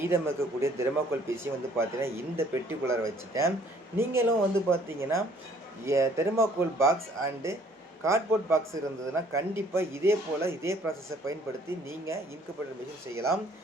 இருக்கக்கூடிய தெர்மாக்கோல் பீஸையும் வந்து பார்த்தீங்கன்னா, இந்த பெட்டிக்குள்ளார வச்சுட்டேன். நீங்களும் வந்து பார்த்தீங்கன்னா, thermocol box and cardboard box இருந்ததுன்னா, கண்டிப்பா இதே போல இதே ப்ராசஸ பயன்படுத்தி நீங்க இன்குபேட்டர் மெஷின் செய்யலாம்.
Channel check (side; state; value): both; normal; correlation 0.59